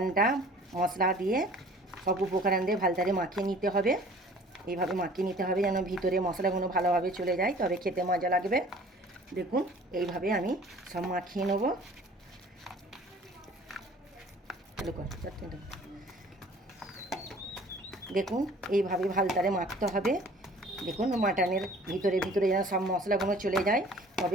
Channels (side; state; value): both; normal; correlation 0.50